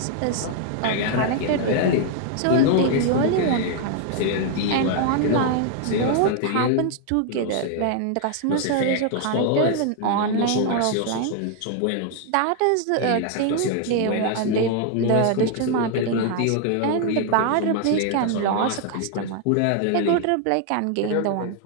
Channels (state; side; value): different; both; correlation 0.00